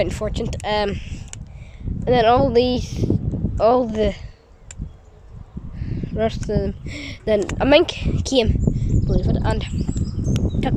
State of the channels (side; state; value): both; identical; correlation 1.00